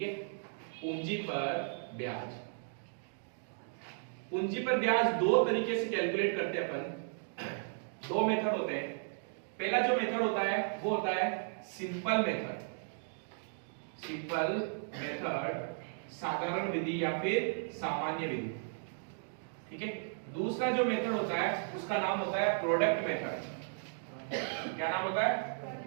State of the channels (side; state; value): left; silent; digital silence